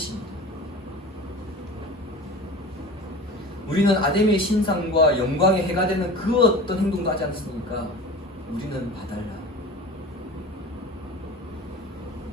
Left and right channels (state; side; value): normal; both; correlation 0.36